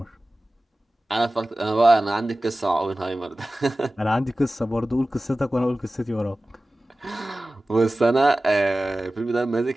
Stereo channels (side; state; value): both; normal; correlation 0.96